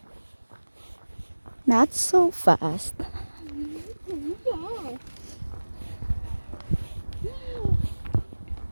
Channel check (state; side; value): inverted; both; correlation -1.00